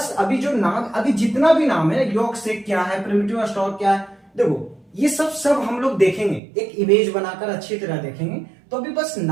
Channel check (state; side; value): drops out; left; at 6.4 s